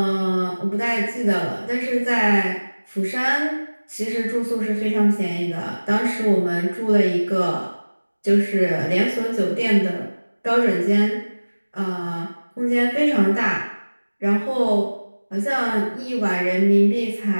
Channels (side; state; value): both; inverted; correlation -1.00